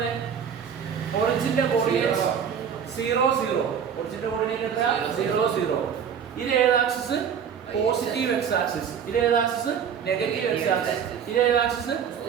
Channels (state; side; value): quieter; left; 7.7 dB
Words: ഒറിജിന്റെ കോർഡിനേറ്റ്സ് 0, 0. ഒറിജിന്റെ കോർഡിനേറ്റ് എത്രയാ? 0, 0. ഇത് ഏത് ആക്സിസ്? Positive X axis. ഇത് ഏത് ആക്സിസ്? Negative X axis. ഇത് ഏത് ആക്സിസ്?